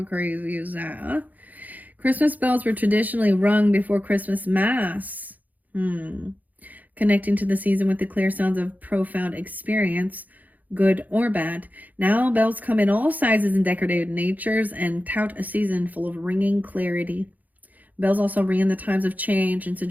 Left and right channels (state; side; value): late; left; 0.080 ms